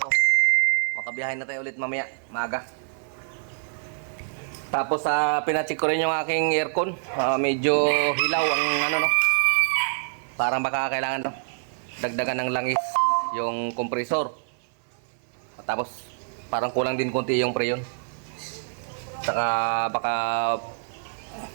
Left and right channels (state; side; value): silent; left; 61 dB below the other